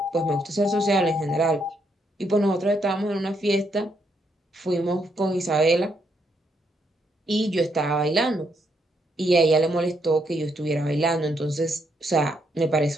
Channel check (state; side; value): normal; both; correlation 0.76